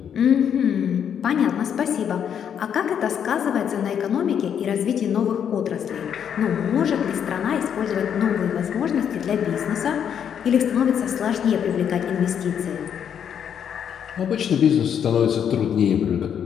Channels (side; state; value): right; quieter; 8.4 dB